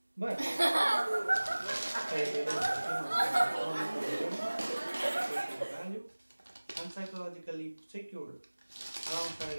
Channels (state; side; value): inverted; both; correlation -1.00